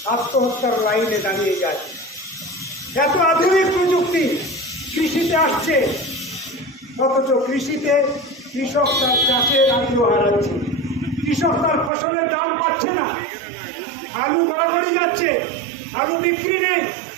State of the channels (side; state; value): left; drops out; at 11.9 s